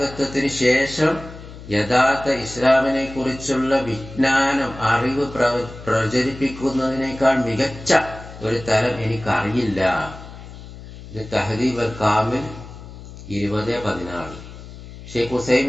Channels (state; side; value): noise; left; hum, 15 dB below the sound